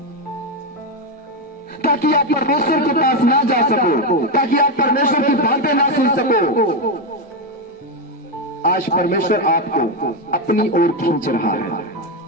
ताकि आप परमेश्वर के पास ना जा सको, ताकि आप परमेश्वर की बातें ना सुन सको। आज परमेश्वर आपको अपनी ओर खींच रहा है।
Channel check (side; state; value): both; normal; correlation 0.08